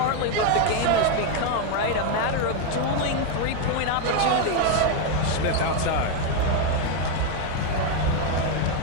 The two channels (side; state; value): both; different; correlation 0.01